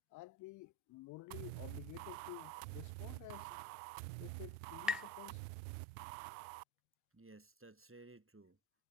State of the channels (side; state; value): both; normal; correlation 0.26